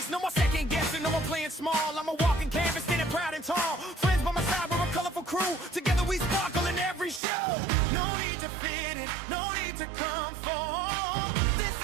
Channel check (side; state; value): left; drops out; at 7.2 s